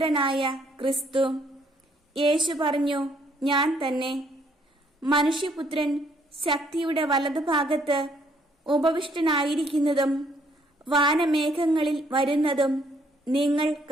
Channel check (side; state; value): both; normal; correlation 0.67